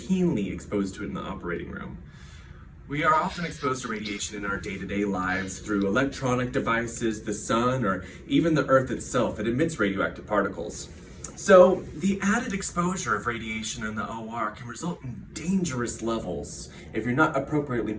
exposed to it in the operating room. We are often exposed to radiation in our day-to-day lives through electronic devices, the sun, or even the earth itself. It emits radioactive particles. So the added exposure of radiation in the OR can result in dangerous levels if you're not appropriately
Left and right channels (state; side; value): identical; both; correlation 1.00